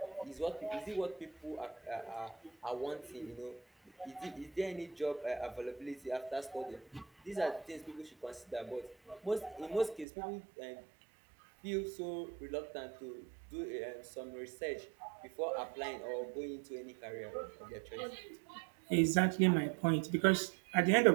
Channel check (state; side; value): drops out; left; at 10.1 s